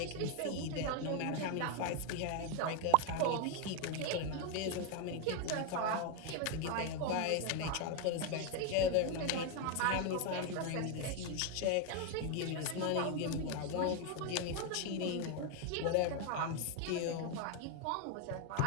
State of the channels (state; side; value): different; both; correlation 0.01